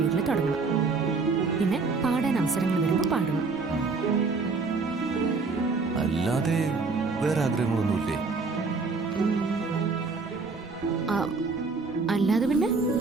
തുടങ്ങണം. പിന്നെ പാടാൻ അവസരങ്ങൾ വരുമ്പോൾ പാടണം. അല്ലാതെ വേറെ ആഗ്രഹങ്ങളൊന്നുമില്ലേ? അല്ലാതെ പിന്നെ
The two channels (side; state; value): left; quieter; 4.2 dB